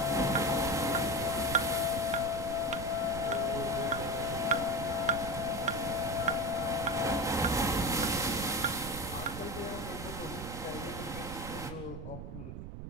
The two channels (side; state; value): right; noise; rumble, 9 dB below the sound